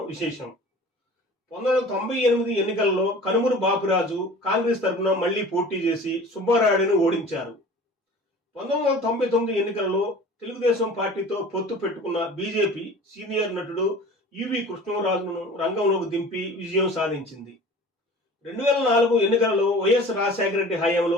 విశేషం. 1998 ఎన్నికల్లో కనుమూరు బాపురాజు కాంగ్రెస్ తరఫున మళ్లీ పోటీ చేసి సుబ్బారాయుడును ఓడించారు. 1999 ఎన్నికల్లో తెలుగుదేశం పార్టీతో పొత్తు పెట్టుకున్న బీజేపీ సీనియర్ నటుడు యువి కృష్ణరాజును రంగంలోకి దింపి విజయం సాధించింది. 2004 ఎన్నికలలో వైఎస్ రాజశేఖర రెడ్డి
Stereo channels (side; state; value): both; normal; correlation 0.42